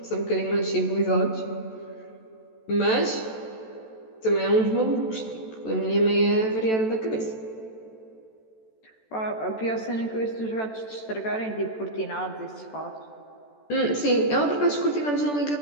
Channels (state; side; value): late; right; 14 ms